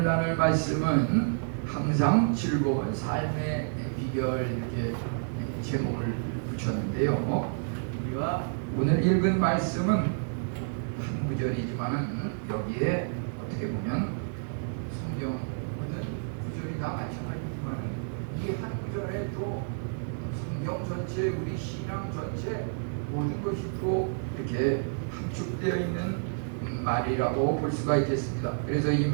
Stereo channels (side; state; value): left; silent; digital silence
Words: 나눌 말씀은 항상 즐거운 삶의 비결, 이렇게 제목을 붙였는데요. 우리가 오늘 읽은 말씀은 한 구절이지만 여기에 어떻게 보면 성경 모든 구절이 다 마찬가지지만 이 한 구절에 또 성경 전체, 우리 신앙 전체 모든 것이 또 이렇게 함축되어 있는 말이라고 볼 수가 있겠습니다. 그래서 이